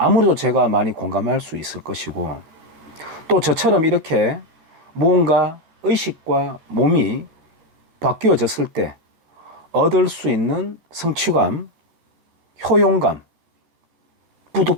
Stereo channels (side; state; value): left; late; 13 ms